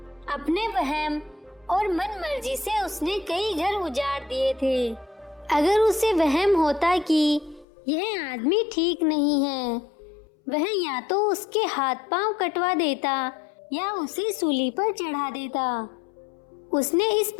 अपने वहम और मन मर्जी से उसने कई घर उजाड़ दिए थे। अगर उसे वहम होता कि यह आदमी ठीक नहीं है, वह या तो उसके हाथ पांव कटवा देता या उसे सूली पर चढ़ा देता। उसने इस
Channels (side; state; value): right; drops out; at 7.7 s